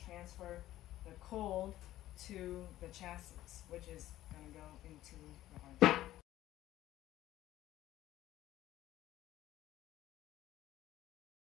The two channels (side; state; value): right; quieter; 14.4 dB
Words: transfer the cold to the chassis, which is going to go into the RV.